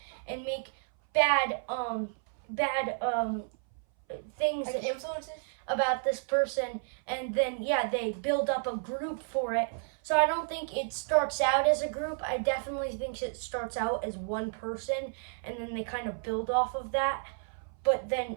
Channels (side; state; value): left; silent; 57 dB below the other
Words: and make bad things Like influences? about this person, and then they build up a group for it. So I don't think it starts out as a group. I definitely think it starts out as one person, and then they kind of build off of that. But